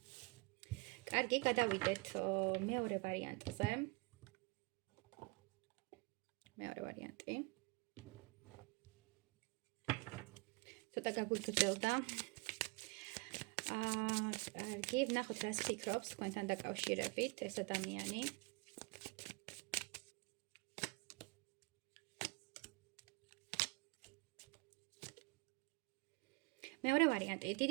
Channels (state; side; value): quieter; left; 26.6 dB